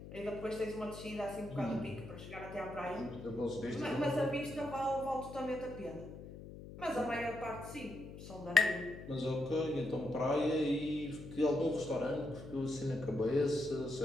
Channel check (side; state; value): left; noise; hum, 13 dB below the sound